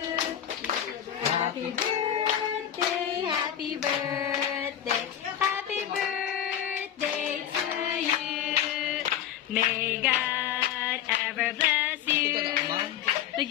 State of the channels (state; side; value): quieter; right; 10.2 dB